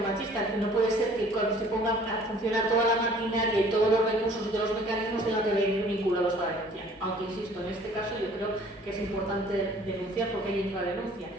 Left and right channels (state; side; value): normal; both; correlation 0.53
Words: que no puede ser que cuando se ponga a funcionar toda la maquinaria y todos los recursos y todos los mecanismos tengan que venir vinculados a la denuncia. Aunque, insisto, en este caso yo creo que es importante denunciar porque hay infradenuncia.